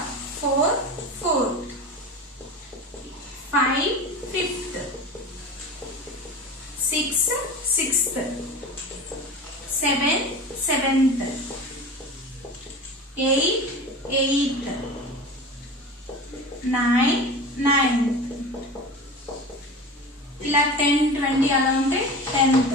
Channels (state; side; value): normal; both; correlation 0.32